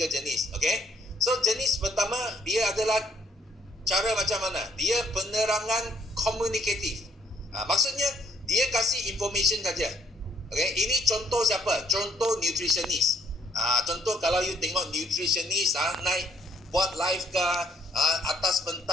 jenis. Okay, so jenis pertama dia adalah cara macam mana? Dia penerangan komunikatif. Maksudnya dia kasih information saja. Okay, ini contoh siapa? Contoh nutritionist. Contoh kalau you tengok nutritionist naik buat live ke atas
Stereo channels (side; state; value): both; normal; correlation 0.66